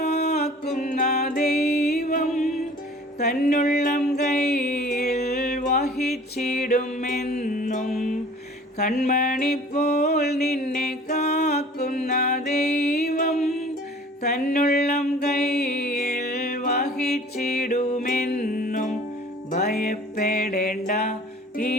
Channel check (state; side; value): normal; both; correlation 0.48